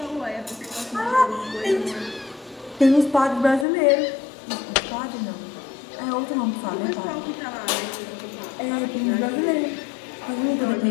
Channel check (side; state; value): right; drops out; at 3.7 s